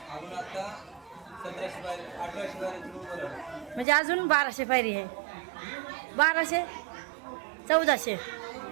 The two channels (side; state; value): left; drops out; at 3.9 s